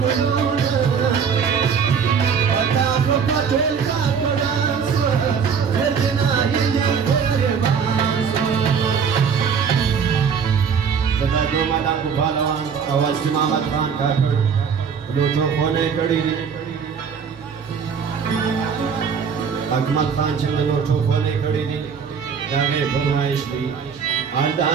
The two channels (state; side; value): quieter; left; 6.6 dB